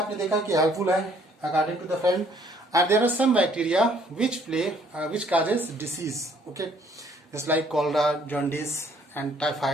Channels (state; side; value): normal; both; correlation 0.62